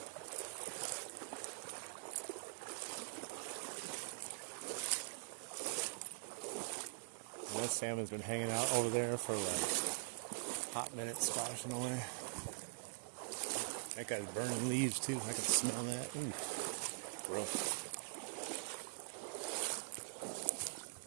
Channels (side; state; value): left; silent; digital silence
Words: And that salmon's been hanging out over there for like hot minutes, splashing away. That guy's burning leaves too. I can smell that. Ooh, gross.